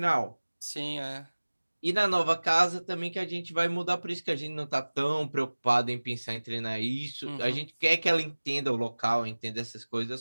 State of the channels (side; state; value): both; inverted; correlation -1.00